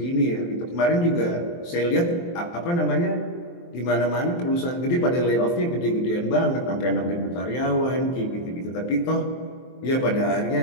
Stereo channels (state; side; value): late; right; 23 ms